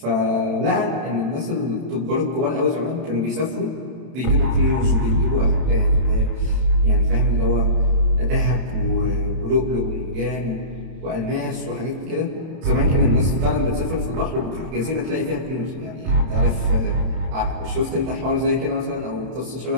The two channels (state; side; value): late; left; 31 ms